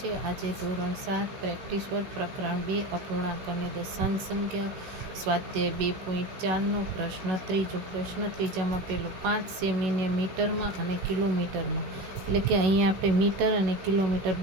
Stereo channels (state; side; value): late; left; 16 ms